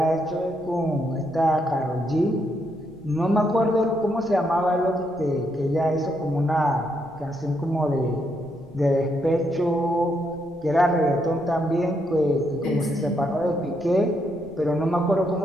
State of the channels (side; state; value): left; noise; rumble, 27 dB below the sound